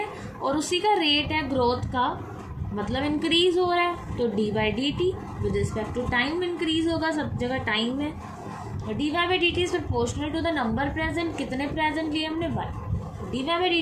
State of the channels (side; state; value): both; identical; correlation 1.00